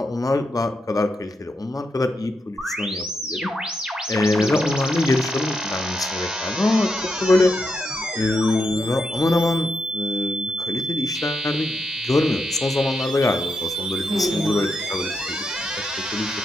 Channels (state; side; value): normal; both; correlation 0.84